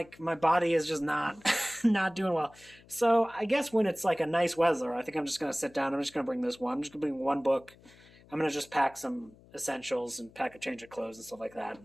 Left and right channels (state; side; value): noise; left; hum, 25 dB below the sound